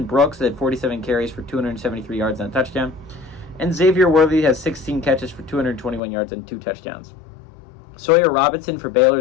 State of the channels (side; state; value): right; drops out; at 6.0 s